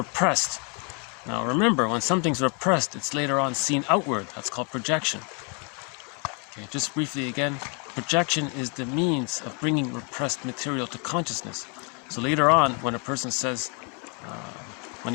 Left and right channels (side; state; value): right; quieter; 36.3 dB